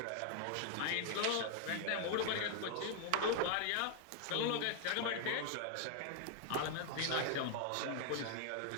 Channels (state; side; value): different; both; correlation 0.00